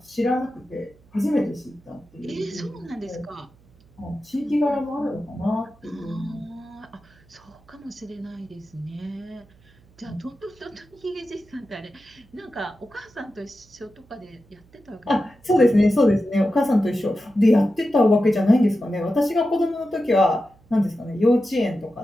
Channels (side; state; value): right; noise; hum, 29 dB below the sound